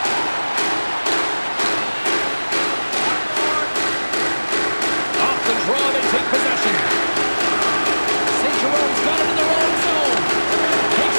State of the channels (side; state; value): both; inverted; correlation -1.00